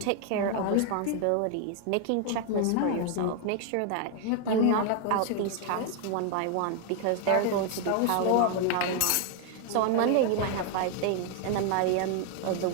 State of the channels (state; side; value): different; both; correlation 0.00